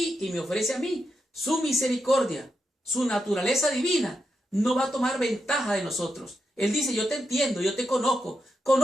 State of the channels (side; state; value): both; normal; correlation 0.85